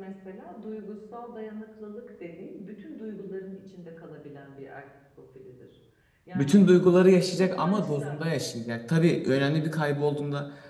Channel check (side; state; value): both; identical; correlation 1.00